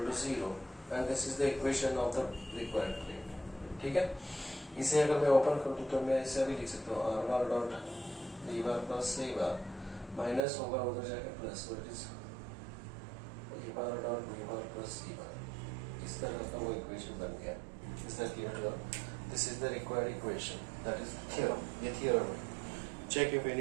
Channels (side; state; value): left; drops out; at 10.4 s